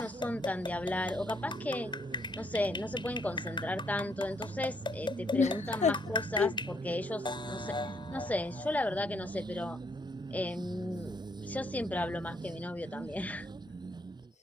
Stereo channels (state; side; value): normal; both; correlation 0.71